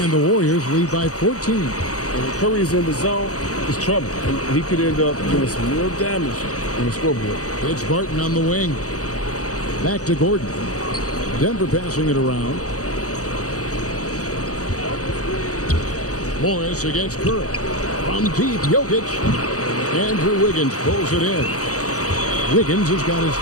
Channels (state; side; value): late; right; 0.66 ms